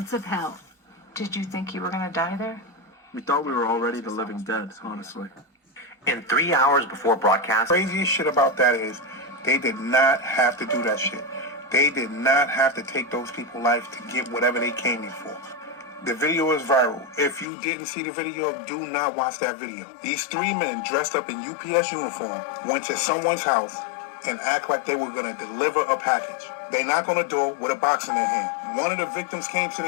of hell. Did you think you were going to die there? We thought we were already the living dead, honestly. In 3 hours before broadcast, Craziest shit about that is they did not have to do that shit. They did not have to take those people's lives to get whatever they came here for. The video is viral. If you didn't see the video, do not watch that video. These 3 men dressed up in UPS uniform went to someone's house and act like they were going to deliver a package. They knock on the door with a box in their hand. One of the victims came to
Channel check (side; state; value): right; drops out; at 17.4 s